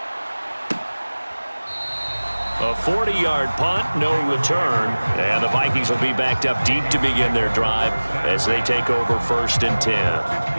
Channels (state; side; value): inverted; both; correlation -1.00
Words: A 40-yard punt, no return. And the Vikings will be backed up deep to begin their drive as they take over 1st and 10.